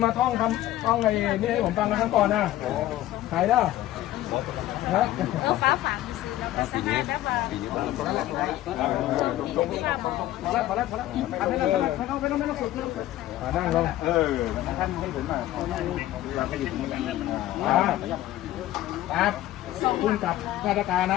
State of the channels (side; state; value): right; quieter; 14.6 dB